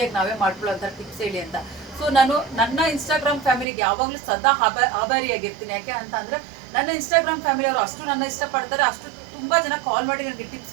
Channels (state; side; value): drops out; left; at 3.7 s